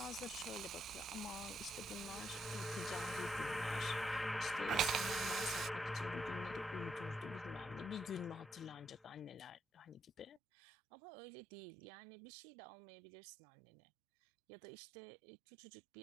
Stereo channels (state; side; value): drops out; left; at 10.4 s